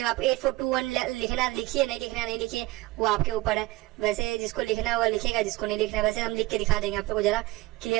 आप 8 4 2 1 लिखना लिखिए, नहीं लिखना नहीं लिखिए, वो आपके ऊपर है। वैसे जिसको लिखना होगा लिखेगा, जिसको नहीं लिखना वैसे हम लिख के दिखा देंगे, आप लोग को जरा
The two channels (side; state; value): left; quieter; 19.4 dB